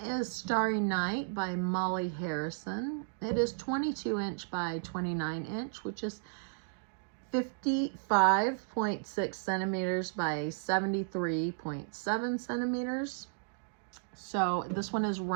Starry Night by Molly Harrison. It is 22 inch by 29 inch, which is 55.6 centimeters by 73.7 centimeters. So this one is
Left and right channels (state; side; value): silent; left; digital silence